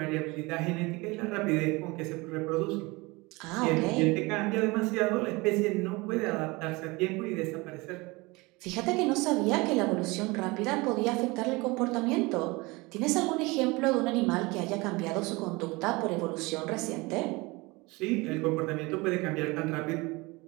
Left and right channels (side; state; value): left; quieter; 24.1 dB